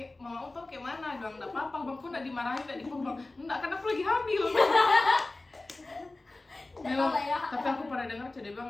mama tau kayak mana, bilang nggak apa-apa bang, kok nggak dimarahin, nggak dipukul, enggak kan aku lagi hamil. Memang, tapi aku pernah dengar dia bilang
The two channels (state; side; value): quieter; right; 3.0 dB